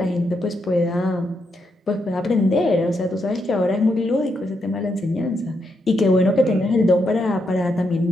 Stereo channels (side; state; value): both; normal; correlation 0.80